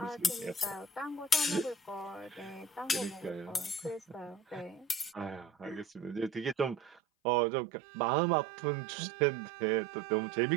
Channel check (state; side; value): drops out; left; at 7.0 s